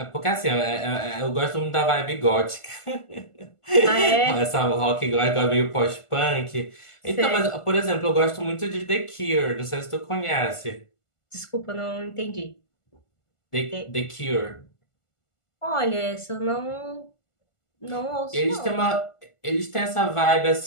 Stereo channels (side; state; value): right; late; 1.5 ms